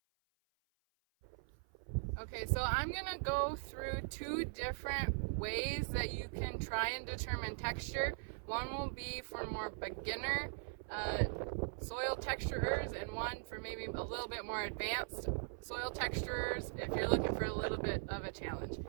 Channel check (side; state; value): left; silent; 51 dB below the other